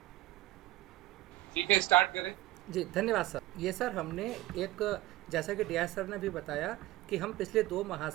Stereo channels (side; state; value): left; quieter; 16.8 dB